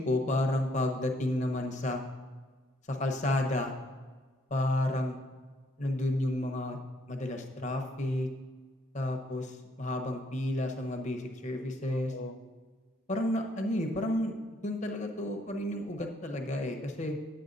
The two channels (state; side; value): normal; both; correlation 0.69